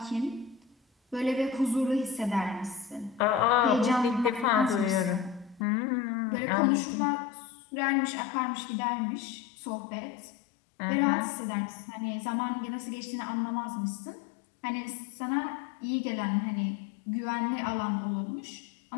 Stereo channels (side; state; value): right; drops out; at 5.7 s